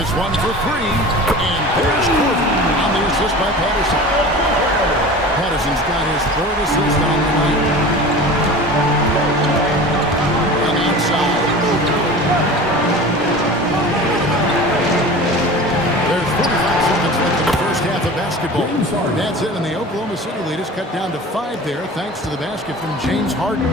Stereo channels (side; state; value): both; normal; correlation 0.36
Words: one for 3. And there's Korver on the assist by Patterson. Patterson's got his 3rd assist on the night. And outside. There's 45 seconds left in the first half of basketball. That's it, and the Oklahoma City lead is cut down to 5 there, thanks to the basket from James Harden.